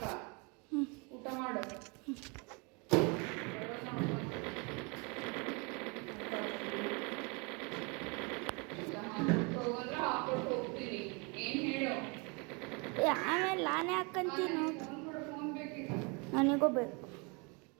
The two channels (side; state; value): left; quieter; 31.2 dB